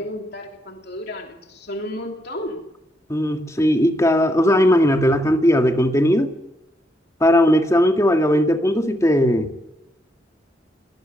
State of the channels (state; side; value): normal; both; correlation 0.77